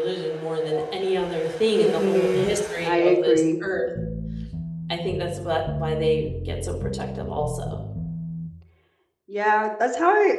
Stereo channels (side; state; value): both; identical; correlation 1.00